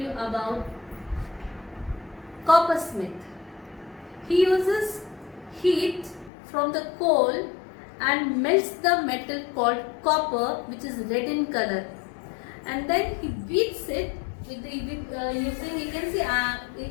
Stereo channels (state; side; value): drops out; right; at 6.3 s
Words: about coppersmith. He uses heat from the coal and melts the metal called copper, which is red in color, and then he beats it with using, you can see a